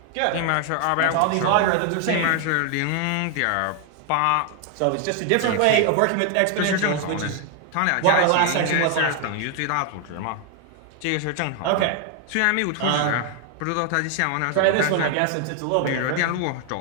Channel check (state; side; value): different; both; correlation 0.00